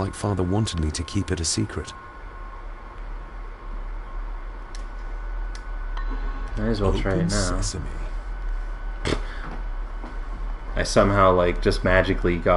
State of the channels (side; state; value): both; identical; correlation 1.00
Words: Father wanted me to keep it a secret. Might as well try it now. Sesame. I somehow like just magically